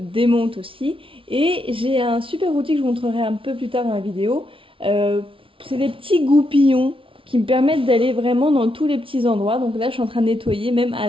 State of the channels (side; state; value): left; late; 0.25 ms